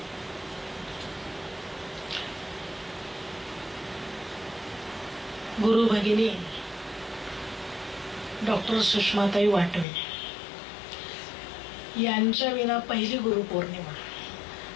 गुरु भगिनी डॉक्टर सुषमाताई वाटवे यांच्या विना पहिली गुरुपौर्णिमा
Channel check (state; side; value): drops out; right; at 9.9 s